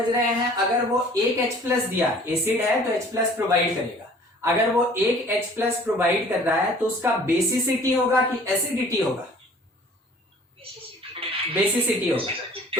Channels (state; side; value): normal; both; correlation 0.51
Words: रहे हैं, अगर वो एक H+ दिया, एसिड है तो H+ प्रोवाइड करेगा, अगर वो एक H+ प्रोवाइड कर रहा है तो उसका बेसिसिटी होगा कि एसिडिटी होगा, बेसिसिटी होगा।